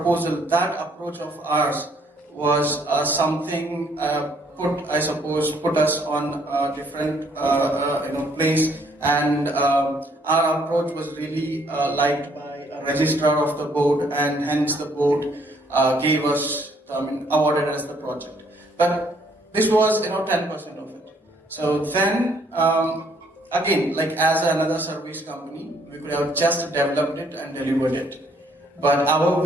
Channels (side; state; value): both; normal; correlation 0.66